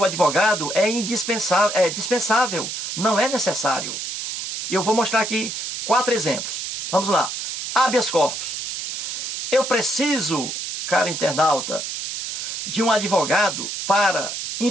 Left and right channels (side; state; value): right; noise; hiss, 5 dB below the sound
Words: advogado é indispensável, é dispensável, não é necessário. E eu vou mostrar aqui 4 exemplos. Vamos lá. Habeas corpus. Eu preciso, cara internauta, de um advogado para